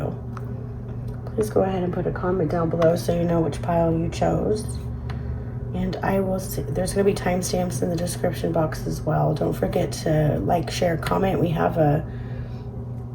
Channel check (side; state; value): both; identical; correlation 1.00